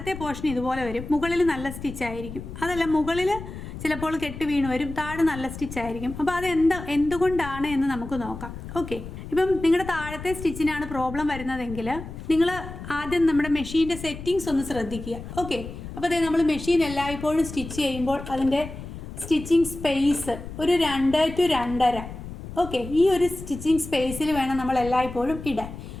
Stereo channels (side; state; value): left; noise; rumble, 11 dB below the sound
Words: പോർഷൻ ഇതുപോലെ വരും, മുകളിൽ നല്ല സ്റ്റിച്ച് ആയിരിക്കും. അതല്ല, മുകളിൽ ചിലപ്പോൾ കെട്ട് വീണ് വരും, താഴെ നല്ല സ്റ്റിച്ച് ആയിരിക്കും. അപ്പോൾ അത് എന്തുകൊണ്ടാണ് എന്ന് നമുക്ക് നോക്കാം. ഓക്കെ, ഇപ്പം നിങ്ങളുടെ താഴത്തെ സ്റ്റിച്ചിനാണ് പ്രോബ്ലം വരുന്നതെങ്കിൽ നിങ്ങൾ ആദ്യം നമ്മുടെ മെഷീൻ്റെ സെറ്റിങ്സ് ഒന്ന് ശ്രദ്ധിക്കുക. ഓക്കെ, അപ്പോൾ അതായത് നമ്മൾ മെഷീൻ എല്ലായ്പ്പോഴും സ്റ്റിച്ച് ചെയ്യുമ്പോൾ അതിൻ്റെ സ്റ്റിച്ചിങ് സ്പേസ് ഒരു 2 to 2.5. ഓക്കെ, ഈ ഒരു സ്റ്റിച്ചിങ് സ്പേസിൽ വേണം നമ്മൾ എല്ലായ്പ്പോഴും ഇടാൻ.